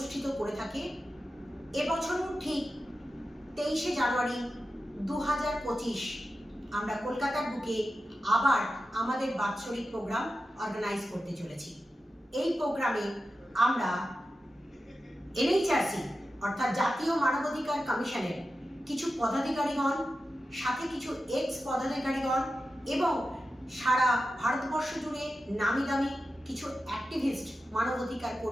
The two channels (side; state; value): both; normal; correlation 0.92